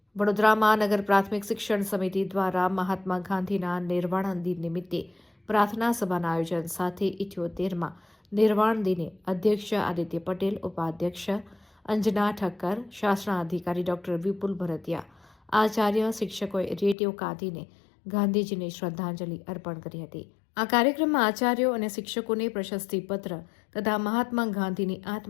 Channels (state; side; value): drops out; right; at 16.9 s